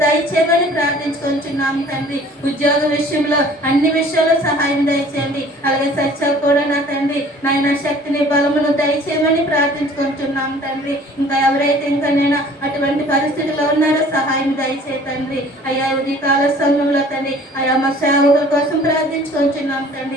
దయచేయమని ప్రార్థించుకొంచున్నాం తండ్రి. ఉద్యోగ విషయంలో అన్ని విషయాల్లో సహాయం దయచేయండి. అలాగే సత్యాలు కూడా నా తండ్రి నాయన శక్తిని బలమును దయచేయమని ప్రార్థించుకుంటున్నాం తండ్రి. ఇంకా ఎవరైతే ఇంకా నేను అటువంటి పరిస్థితుల్లో ఉన్నారో సహాయం దయచే తండ్రి. అయ్యా ఉదయ కాల సమయంలో తండ్రి అయ్యా మా సేవకుల కోసం ప్రార్థించుకుంటున్నాం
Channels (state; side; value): normal; both; correlation 0.51